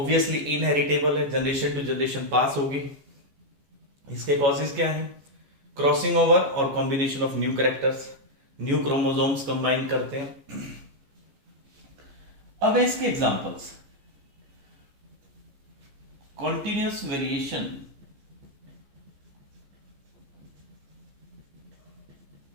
इनहेरिटेबल है, जनरेशन टू जनरेशन पास होगी. इसके कॉजेज क्या है? क्रॉसिंग ओवर और combination of new characters, new chromosomes combine करते हैं. अब है इसके एग्जांपल्स. कॉन्टिन्यूस वेरिएशन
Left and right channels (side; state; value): left; late; 15 ms